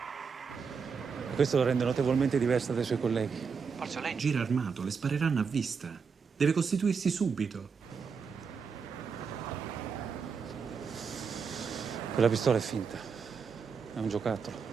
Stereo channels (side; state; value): left; quieter; 5.7 dB